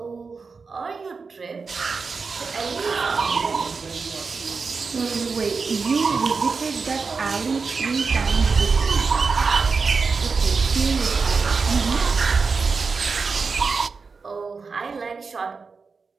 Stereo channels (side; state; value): left; quieter; 4.8 dB